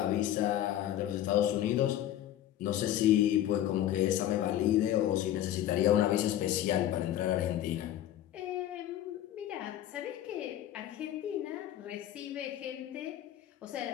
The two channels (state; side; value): quieter; right; 12.2 dB